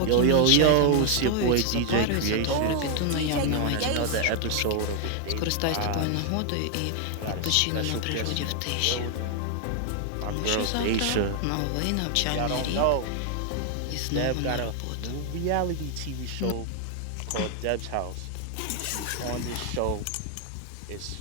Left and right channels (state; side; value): different; both; correlation 0.00